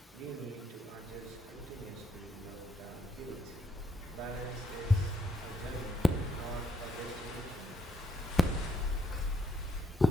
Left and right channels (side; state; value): both; normal; correlation 0.74